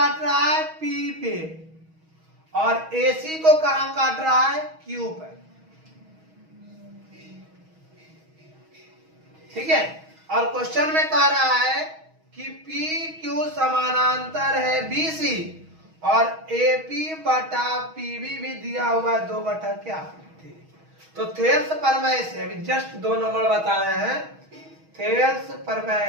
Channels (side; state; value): left; late; 6.3 ms